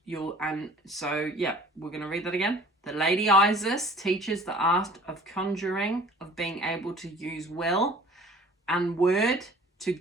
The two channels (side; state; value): both; normal; correlation 0.49